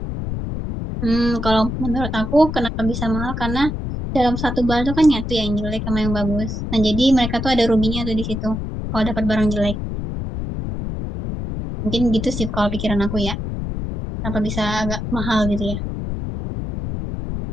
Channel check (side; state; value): left; noise; rumble, 5 dB below the sound